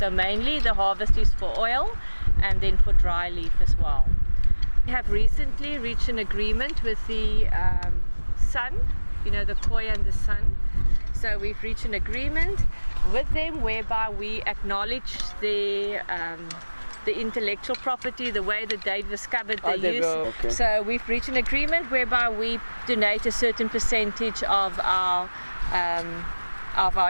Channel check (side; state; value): both; inverted; correlation -1.00